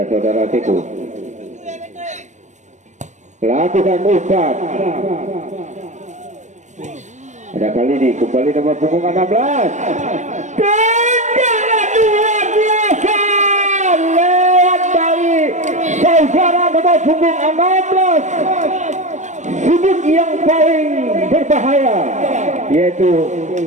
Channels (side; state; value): left; late; 0.34 ms